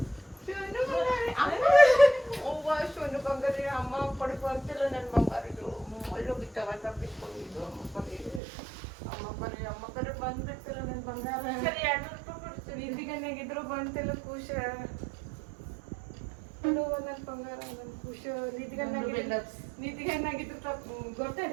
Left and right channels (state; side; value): drops out; left; at 8.4 s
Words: ಶೋನು ಬಂಗಾರಿ ಅಮ್ಮ ಪಡ್ಕೊ ಅಂತಿಲ್ಲ. ನನ್ನ ಬಂಗಾರದು ಅಲ್ಲೂ ಬಿತ್ತವ ತಪ್ಪಿಸ್ಕೊಂಡಿದ್ದು ಅಮ್ಮ ಕರೆ ಬಂದ್ಬಿಡ್ತಿಲ್ಲ. ನನ್ನ ಬಂಗಾರ ಸರಿ 200 ರೂಪಾಯಿ ಕೊಡ್ತೀವಿ. ಇದ್ದಿಗನ್ನಾಗಿದ್ರು ಬಂತಿಲ್ಲ ಖುಷ. ನನ್ನ ಬಂಗಾರ ನನ್ನ ಖುಷ. ನಿದ್ದಿಗನ್ನಾಗಿದ್ರು ತಪ್ಪು